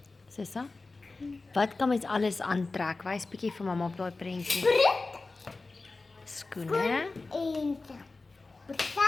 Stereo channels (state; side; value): quieter; right; 3.6 dB